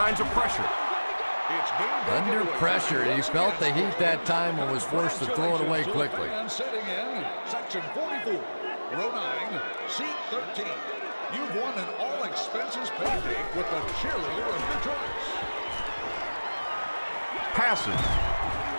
of pressure. Under pressure. He felt the heat that time and was forced to throw it away quickly. And sitting in section 44, row 9, seat 13. You've won an all-expenses paid date with the cheerleader of your choice. Passes.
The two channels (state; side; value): inverted; both; correlation -1.00